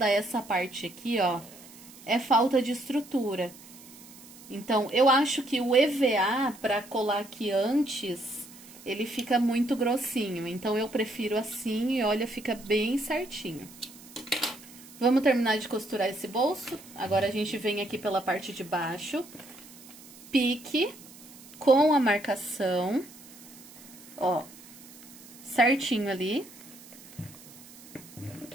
essa parte aqui, ó? É falta de estrutura. Então, eu acho que o EVA, para colar aqui antes, ele fica muito grossinho. Então, eu prefiro assim e olha, fica bem certinho. Vamos terminar de costurar esse bolso. Agora, a gente vem aqui pela parte de baixo. Pique com a marcação. Ó, certinho ali.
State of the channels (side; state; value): right; noise; hiss, 20 dB below the sound